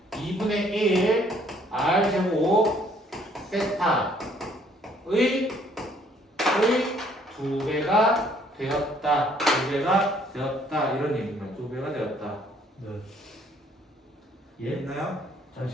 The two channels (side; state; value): both; normal; correlation 0.62